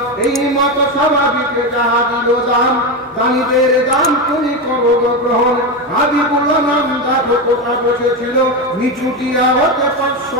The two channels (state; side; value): normal; both; correlation 0.14